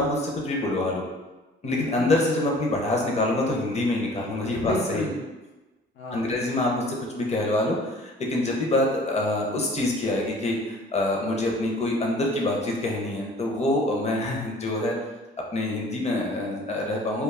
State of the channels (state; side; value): normal; both; correlation 0.50